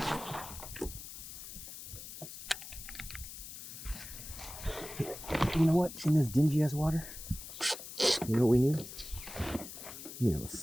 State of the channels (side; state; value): left; noise; hiss, 11 dB below the sound